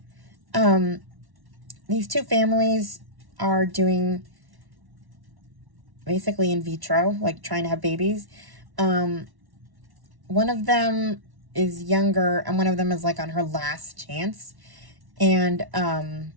These 2 families are doing basically in vitro, like trying to have babies. One of them is younger, and one of them is like on her last chance. And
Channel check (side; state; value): left; late; 1.1 ms